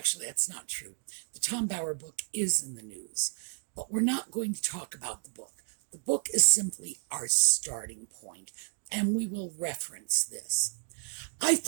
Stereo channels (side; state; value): left; silent; digital silence